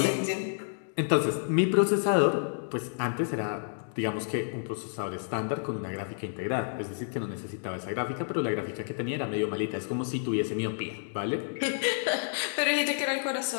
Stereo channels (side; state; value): right; silent; digital silence